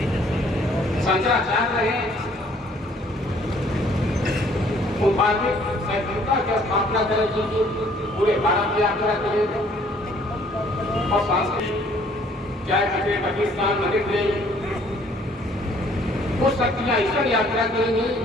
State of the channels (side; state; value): both; normal; correlation 0.60